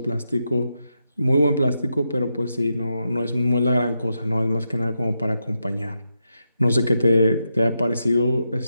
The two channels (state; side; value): inverted; both; correlation -0.85